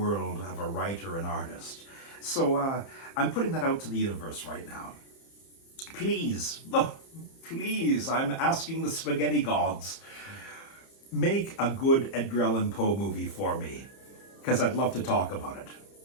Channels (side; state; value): right; late; 30 ms